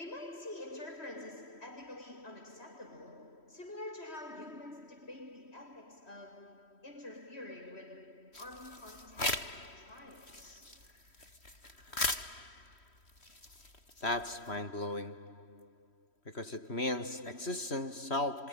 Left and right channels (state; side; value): late; right; 3.1 ms